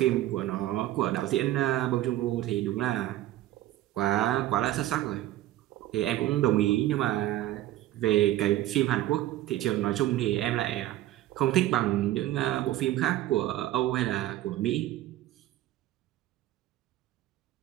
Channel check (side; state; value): left; quieter; 14.6 dB